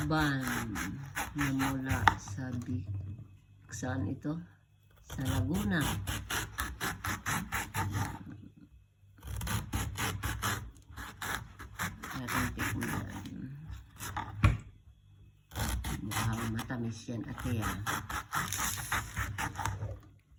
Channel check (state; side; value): identical; both; correlation 1.00